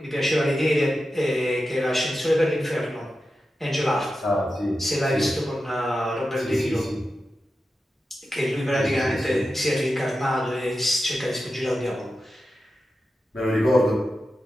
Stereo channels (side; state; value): both; normal; correlation 0.91